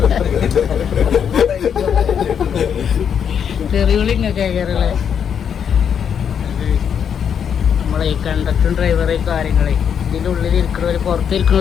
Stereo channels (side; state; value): right; quieter; 7.9 dB